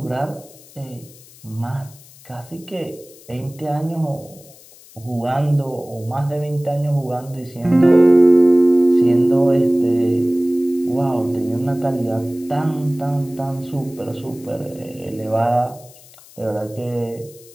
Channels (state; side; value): noise; left; hiss, 23 dB below the sound